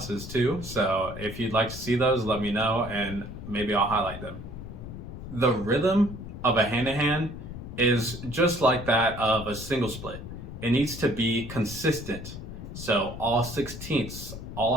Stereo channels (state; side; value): noise; left; rumble, 10 dB below the sound